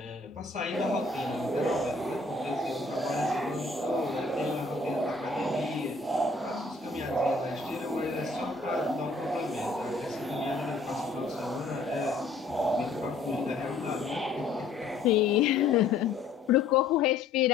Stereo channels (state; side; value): quieter; right; 3.7 dB